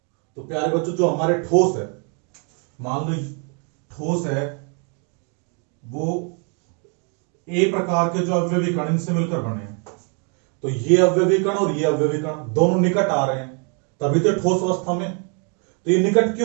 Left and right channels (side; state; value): left; quieter; 38.4 dB